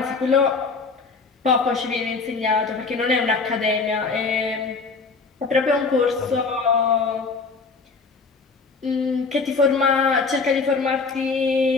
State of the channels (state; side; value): quieter; right; 4.4 dB